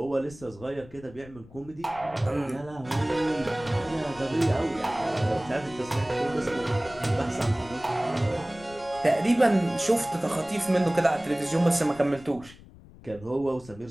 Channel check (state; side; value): noise; left; rumble, 20 dB below the sound